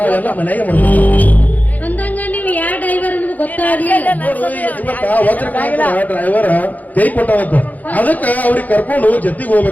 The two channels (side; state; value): right; late; 0.080 ms